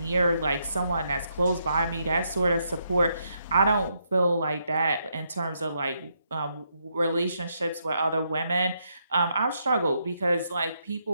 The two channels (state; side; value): inverted; both; correlation -0.78